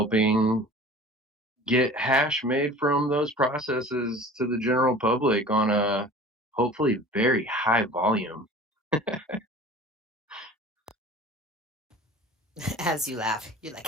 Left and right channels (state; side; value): normal; both; correlation 0.42